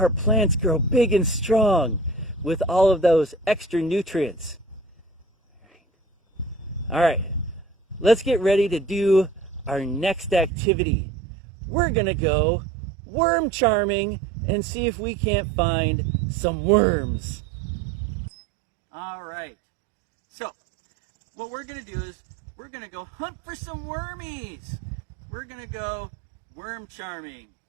plants grow big and strong with all of those extra nutrients. All right, let's get ready to do our next activity. We're gonna go worm charming and see if we can't find some worms. All right, so what we're gonna do is we're gonna go hunt for some wormies. We're gonna go worm charming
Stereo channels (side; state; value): left; drops out; at 10.5 s